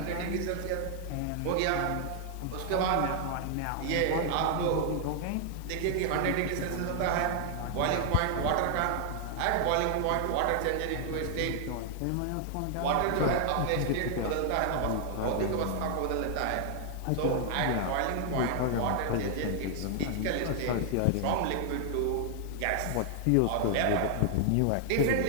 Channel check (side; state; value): both; different; correlation 0.00